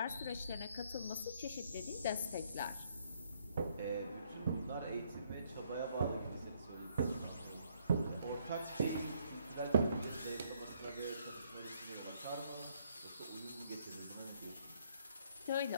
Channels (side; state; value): both; inverted; correlation -0.69